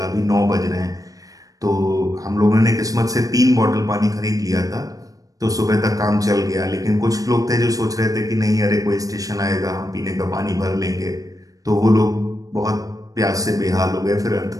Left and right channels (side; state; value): left; late; 0.17 ms